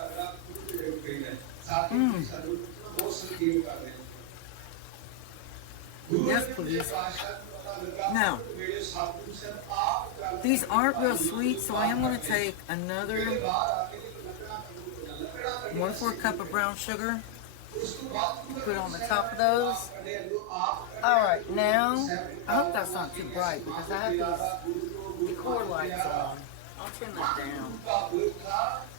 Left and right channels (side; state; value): both; different; correlation 0.00